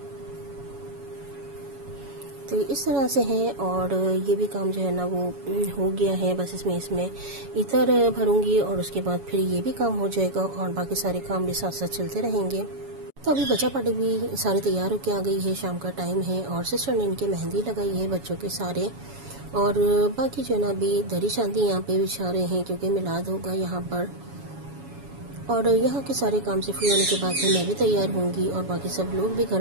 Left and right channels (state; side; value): late; left; 7.1 ms